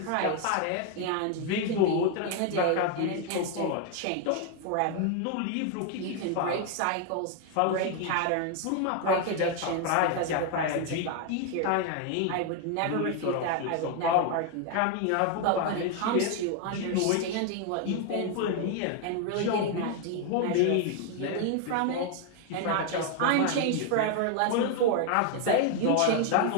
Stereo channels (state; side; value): different; both; correlation 0.01